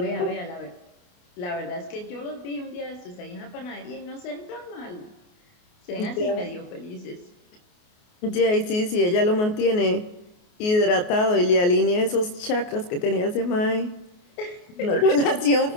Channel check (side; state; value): right; late; 28 ms